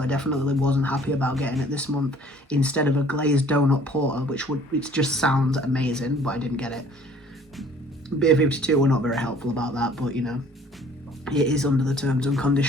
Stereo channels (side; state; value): both; normal; correlation 0.54